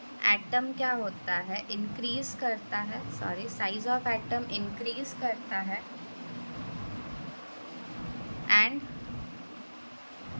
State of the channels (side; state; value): both; inverted; correlation -1.00